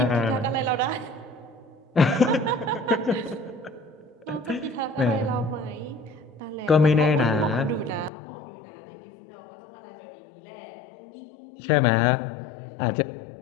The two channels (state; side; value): drops out; right; at 8.1 s